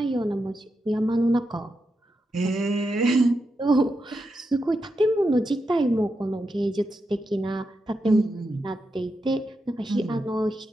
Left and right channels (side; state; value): both; normal; correlation 0.87